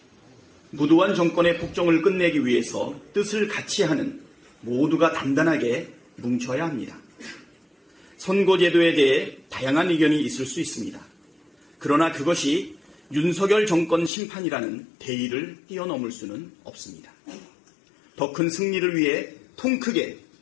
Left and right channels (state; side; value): drops out; right; at 14.1 s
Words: 무도한 정권의 폭정을 끝내기 위해서 뜻을 같이 하는 모두가 단단하게 뭉쳐야 합니다. 선거제도에 대해 다양한 의견이 있을 수 있습니다. 그러나 그것이 윤석열 정권 심판이라는 대의를 뛰어넘을 수는 없습니다. 더 큰 승리를 위해 통 크게